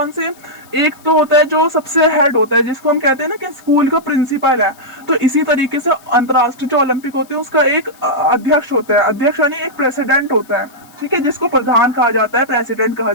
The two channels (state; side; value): noise; left; hiss, 27 dB below the sound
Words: से? एक तो होता है जो सबसे हेड होता है, जिसको हम कहते हैं ना कि स्कूल का प्रिंसिपल है। तो इसी तरीके से अंतर्राष्ट्रीय जो ओलंपिक होते हैं उसका एक अध्यक्ष होता है, अध्यक्ष यानी एक प्रेसिडेंट होता है, ठीक है, जिसको प्रधान कहा जाता है, प्रेसिडेंट कहा